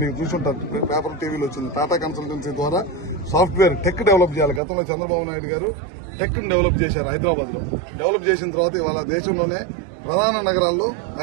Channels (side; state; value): left; drops out; at 4.6 s